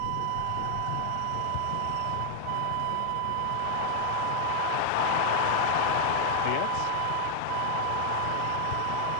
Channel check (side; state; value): both; different; correlation 0.00